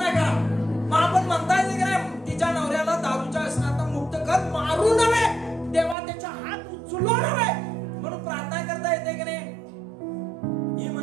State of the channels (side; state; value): left; drops out; at 6.0 s